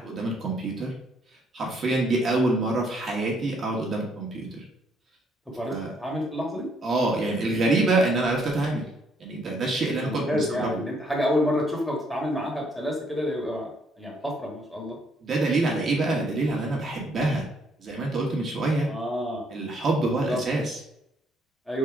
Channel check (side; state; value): both; normal; correlation 0.69